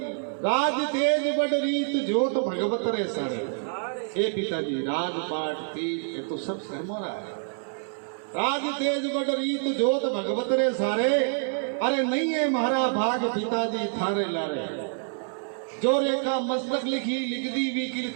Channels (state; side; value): silent; left; digital silence